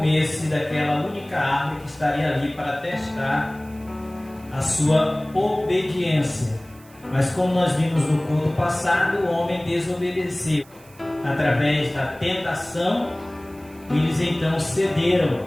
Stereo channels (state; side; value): noise; right; hiss, 26 dB below the sound